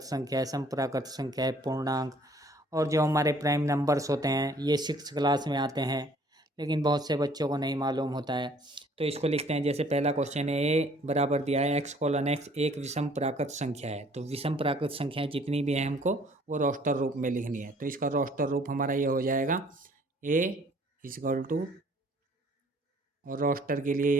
संख्या है, सम प्राकृत संख्या है, पूर्णांक और जो हमारे प्राइम नंबर्स होते हैं ये 6 क्लास में आते हैं, लेकिन बहुत से बच्चों को नहीं मालूम होता है। तो इसको लिखते हैं, जैसे पहला क्वेश्चन है, ए बराबर दिया है x:x एक विषम प्राकृत संख्या है। तो विषम प्राकृत संख्याएं जितनी भी हैं हमको वो रोस्टर रूप में लिखनी है। तो इसका रोस्टर रूप हमारा ये हो जाएगा a इक्वल टू, और रोस्टर के लिए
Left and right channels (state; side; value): normal; both; correlation 0.58